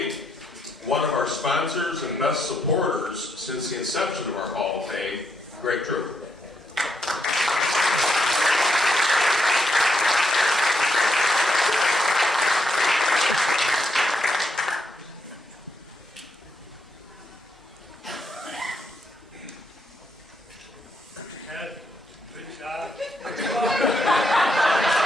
one of our sponsors and best supporters since the inception of our Hall of Fame, Greg True. Ed, good job.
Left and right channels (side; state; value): both; normal; correlation 0.78